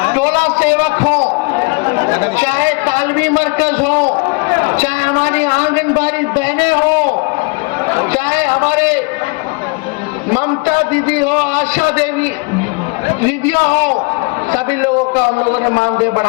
टोला सेवक हो, चाहे तालमी मरकज हो, चाहे हमारी आंगनबाड़ी बहनें हो, चाहे हमारे ममता दीदी हो, आशा देवी दीदियां हो, सभी लोगों का हम लोगों ने मानदेय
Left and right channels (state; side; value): quieter; right; 29.9 dB